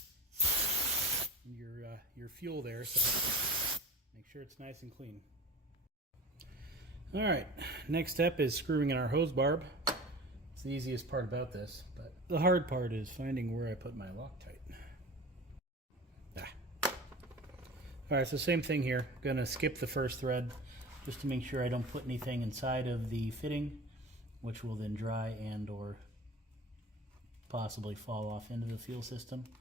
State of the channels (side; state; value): both; normal; correlation 0.36